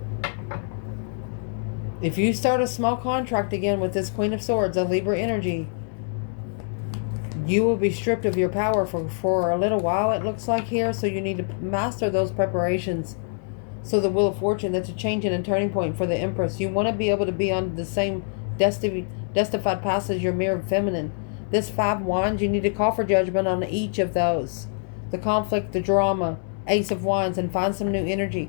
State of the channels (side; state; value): right; silent; 62 dB below the other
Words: If you start a small contract again with this Queen of Swords, a Libra energy, you will be stripped of your power for a little while, it looks like here. So you need to master those preparations. So the Wheel of Fortune, that's a change and a turning point for the Empress. You want to be able to be on the same justified path as your mirrored feminine. This 5 wands, you need to call for judgment on each of those. The conflict, the drama, Ace of Wands, and find some new